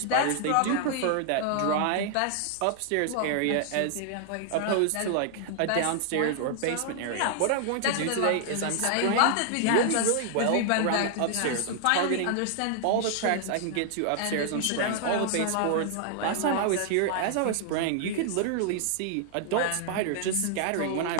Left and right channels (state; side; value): different; both; correlation 0.00